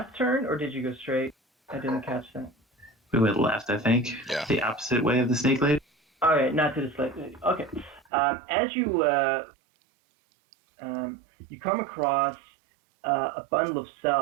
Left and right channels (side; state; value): left; drops out; at 8.0 s